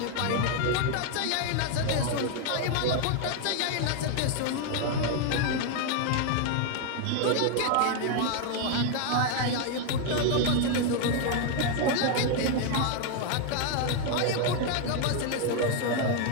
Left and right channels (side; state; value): both; different; correlation 0.00